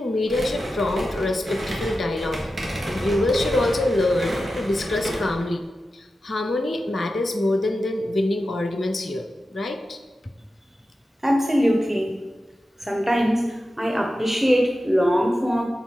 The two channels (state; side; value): normal; both; correlation 0.92